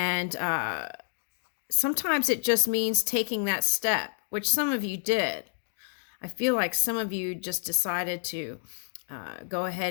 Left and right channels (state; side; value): silent; right; 59 dB below the other